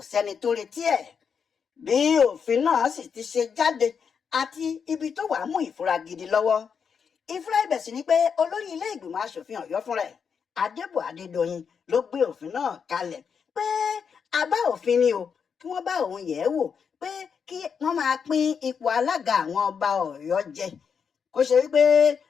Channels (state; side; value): quieter; right; 6.5 dB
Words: sẹ́ni tó retí ẹ̀. Bí òfin náà sì ti ṣe jáde àti ibi tó wàá mú ìfura gidi lọ́wọ́. Ìfura ibẹ̀ sì ni pé olórí ilé ìgbìmọ̀ aṣòfin Ọ̀yọ́ fúnra ẹ̀, Adébọ̀ Adédoyin, ló gbé òfin náà kalẹ̀ pé àbá òfin ni o, kí wọ́n bá òun yẹ̀ ẹ́ wò pé kí wọ́n máa pín ipò alága àwọn ọba Ọ̀yọ́ jẹ. Kó ṣe wípé